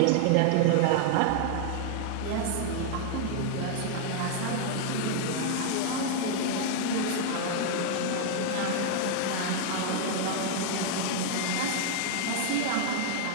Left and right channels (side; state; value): both; different; correlation 0.00